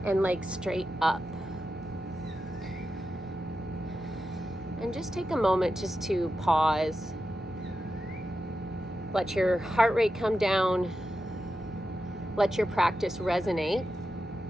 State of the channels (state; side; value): normal; both; correlation 0.89